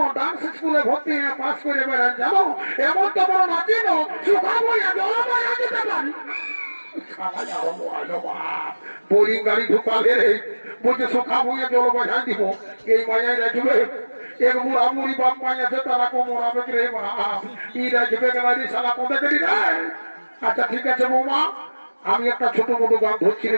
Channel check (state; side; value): inverted; both; correlation -1.00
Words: ডান্স স্কুলে ভর্তি পাস করে বেড়ান, জানো এমন তো বড় নাচি না সুখাবো দিতে পারি। বোরিং গাড়ি ঢুকালে রে বলছে সুখা ভুঁয়ে জল বাজাই দিব, এই মায়াই রাখবে এক বুড়া মুড়ি বাপ মাই আছে তারা কোমরাবে রে বাপ, ই রাখবে গাড়ি শালা কোথায় গেলি রে। আচ্ছা ঠিক আছে বৌমা, আমি একটা ছোট মোটো গান ধরছি